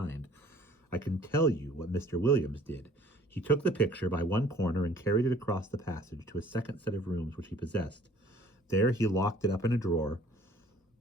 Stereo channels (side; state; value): both; normal; correlation 0.54